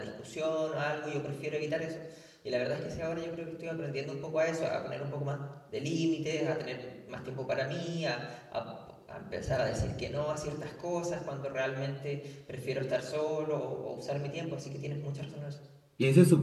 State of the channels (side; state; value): both; identical; correlation 1.00